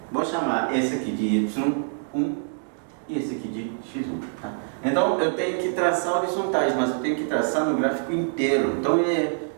Vou chamar esse aqui de Y1 e esse aqui de X1. Tá? Então eu tenho que traçar horizontais, mas eu tenho que traçar no gráfico inteiro. Então é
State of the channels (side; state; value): left; silent; digital silence